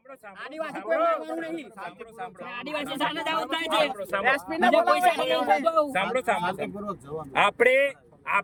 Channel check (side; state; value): both; identical; correlation 1.00